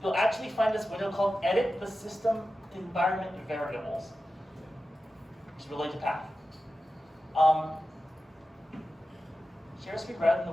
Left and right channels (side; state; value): both; normal; correlation 0.93